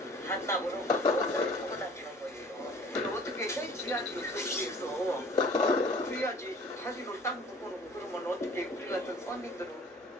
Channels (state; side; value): normal; both; correlation 0.49